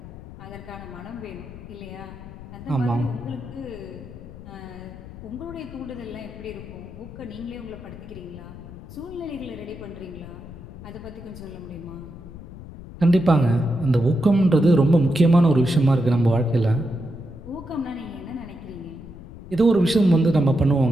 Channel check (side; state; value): left; noise; rumble, 15 dB below the sound